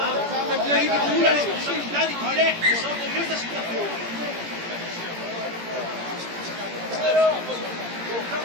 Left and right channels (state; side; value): late; left; 17 ms